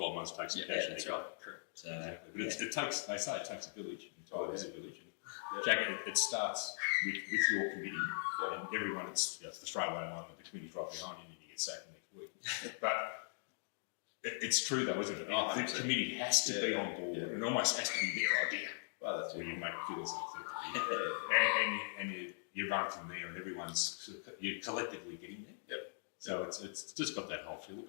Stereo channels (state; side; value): silent; right; digital silence